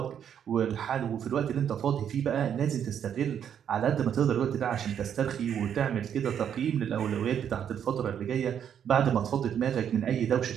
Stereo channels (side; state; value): left; quieter; 8.8 dB